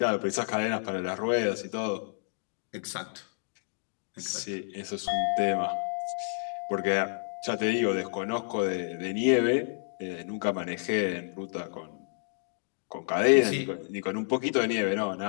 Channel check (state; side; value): silent; right; 58 dB below the other